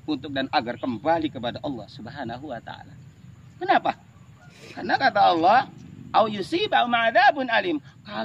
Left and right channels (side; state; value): both; identical; correlation 1.00